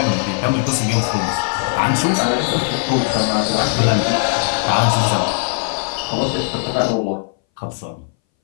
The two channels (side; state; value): right; silent; 62 dB below the other